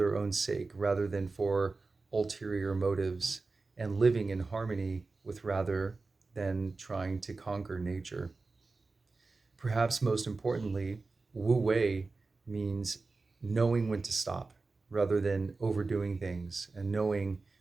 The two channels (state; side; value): quieter; left; 3.8 dB